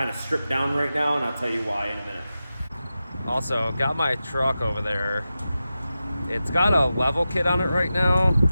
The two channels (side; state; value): both; inverted; correlation -0.92